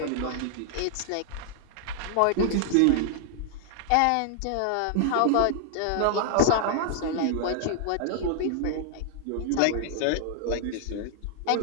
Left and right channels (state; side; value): different; both; correlation 0.00